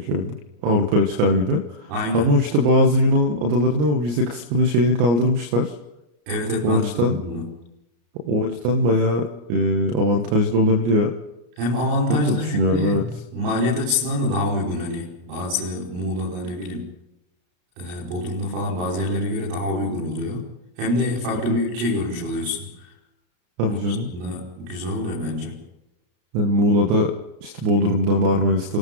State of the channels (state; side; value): late; left; 33 ms